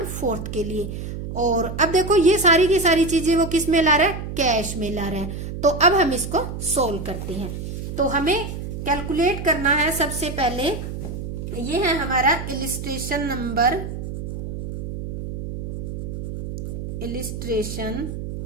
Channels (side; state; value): right; noise; hum, 7 dB below the sound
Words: के लिए। और अब देखो ये सारी की सारी चीजें वो किस में ला रहा है, कैश में ला रहा है। तो अब हम इसको सोल्व करते हैं। तो हमें कैलकुलेट करना है, सबसे पहले ये है हमारा इलिस्ट्रेशन